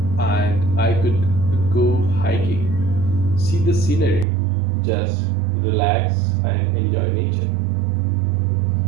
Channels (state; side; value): drops out; left; at 4.2 s